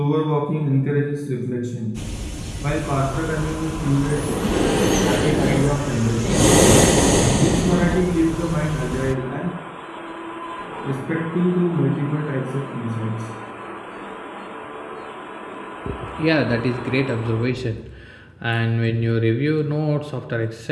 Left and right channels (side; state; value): both; identical; correlation 1.00